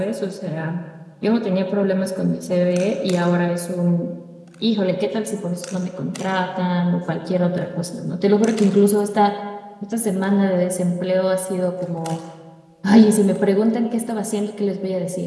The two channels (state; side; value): identical; both; correlation 1.00